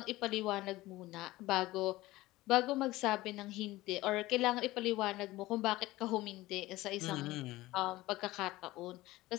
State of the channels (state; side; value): quieter; right; 18.2 dB